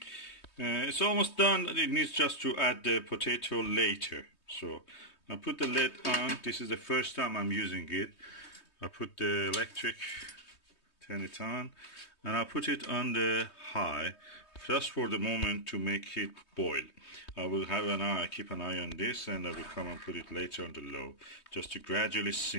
It's almost done. It needs just to add the potato later. So I put the lid on. This is the first time I'm using it. I put the electric, turn it on, and I put it on the high just for the moment to make it boil. I will have an eye, keep an eye on this, and I will come and put it later on the low just to gradually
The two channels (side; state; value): right; late; 3.2 ms